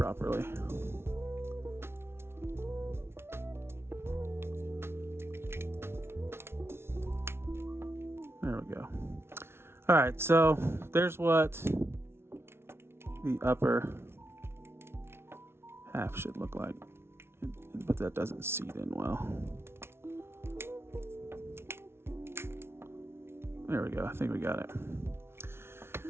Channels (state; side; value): late; left; 0.12 ms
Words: There we go. All right, so there's what the upper half should look like, but that doesn't seat in well. There we go. I think we got it.